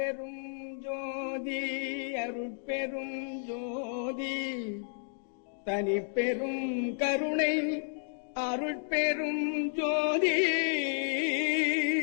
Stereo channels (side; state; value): right; silent; digital silence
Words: ஜோதி அருட்பெரும் ஜோதி தனிப்பெரும் கருணை அருட்பெரும் ஜோதி.